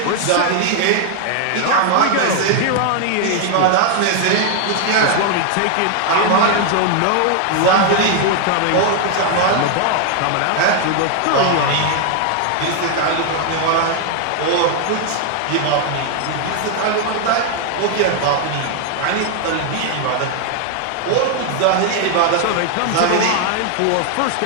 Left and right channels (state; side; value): different; both; correlation 0.00